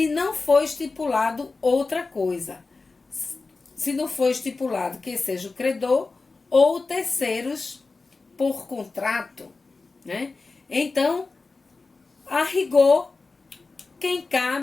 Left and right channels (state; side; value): quieter; right; 3.9 dB